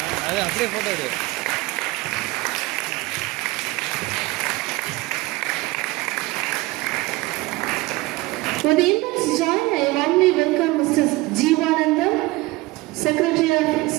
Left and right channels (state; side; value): quieter; left; 21.4 dB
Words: அது அப்படியே ஃபோட்டோ எடு. With the immense joy, I warmly welcome Mr. Jeevanandam, Secretary of